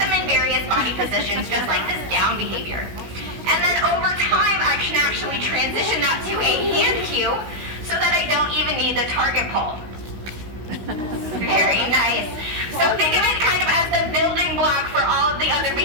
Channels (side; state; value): left; late; 16 ms